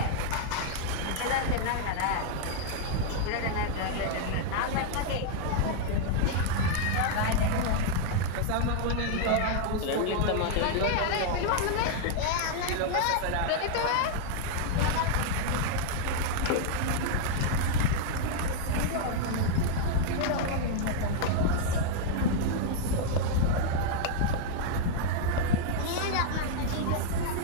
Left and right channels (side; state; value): both; different; correlation -0.01